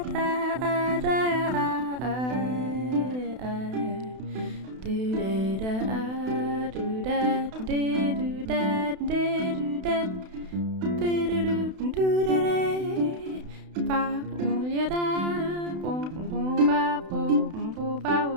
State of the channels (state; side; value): late; left; 32 ms